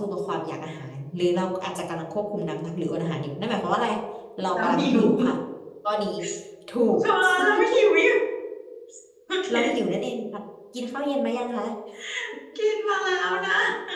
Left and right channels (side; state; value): both; identical; correlation 1.00